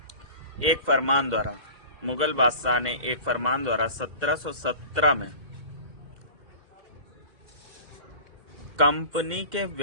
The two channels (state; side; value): late; left; 2.0 ms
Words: एक फरमान द्वारा, मुगल बादशाह ने एक फरमान द्वारा 1717 में कंपनी के